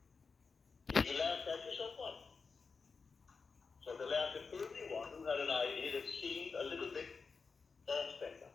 If you laugh at yourself, what? So the laugh at everyone who had an idea that seemed a little bit off-center.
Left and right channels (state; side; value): quieter; right; 4.9 dB